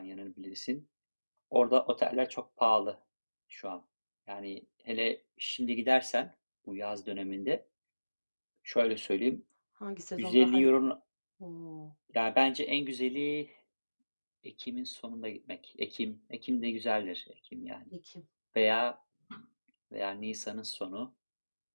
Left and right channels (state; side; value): inverted; both; correlation -1.00